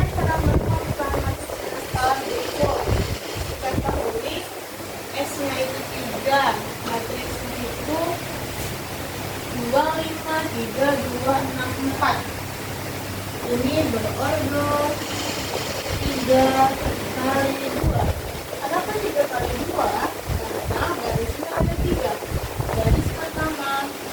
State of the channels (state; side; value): identical; both; correlation 1.00